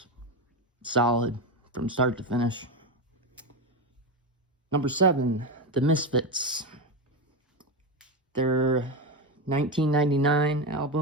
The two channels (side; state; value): both; normal; correlation 0.15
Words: solid from start to finish. Number 7, The Misfits. Their 1999